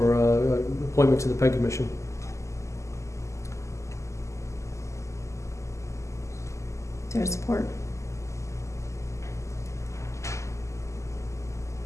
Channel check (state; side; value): late; right; 0.14 ms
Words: appointment to the Peg Commission. Is there support?